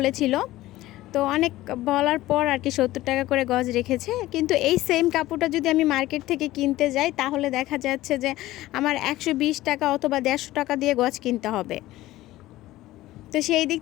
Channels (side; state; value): right; quieter; 16.5 dB